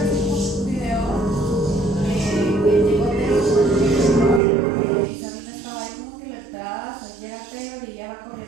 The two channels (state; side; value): drops out; left; at 4.4 s